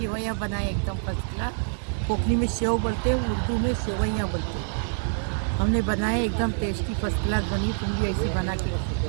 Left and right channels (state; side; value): silent; left; digital silence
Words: बनाए, एकदम फर्स्ट क्लास। कोकनी में सेव बोलते हैं, उर्दू में सेवइयाँ बोलते हैं। हमने बनाए, एकदम टेस्टी फर्स्ट क्लास बनी। तुम भी ऐसी बना के